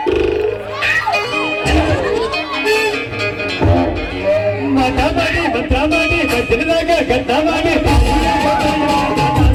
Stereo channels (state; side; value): identical; both; correlation 1.00